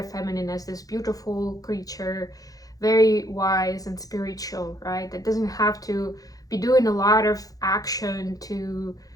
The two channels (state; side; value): late; right; 0.17 ms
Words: feminine as this beautiful creature, very wise and spiritual, right? That doesn't have to be doing a lot of action to